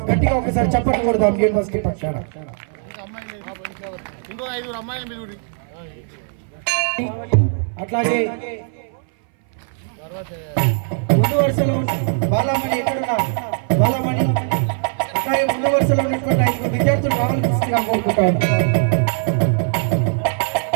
గట్టిగా ఒకసారి చప్పట్లు కొడదాం యూనివర్సిటీ పక్షాన. అట్లాగే ముందు వరుసలో బాలమణి ఎక్కడున్నా, బాలమణి అట్లాగే ముందు వరుసలో ఉన్నటువంటి 5 విద్యార్థులు రావాల్సిందిగా కోరుకుంటా ఉన్నారు.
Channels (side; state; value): left; silent; 60 dB below the other